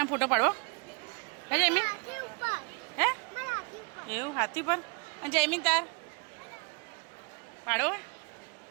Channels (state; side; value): quieter; left; 33.9 dB